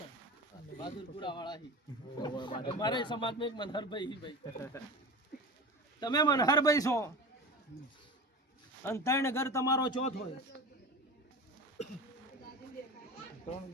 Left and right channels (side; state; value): both; normal; correlation 0.30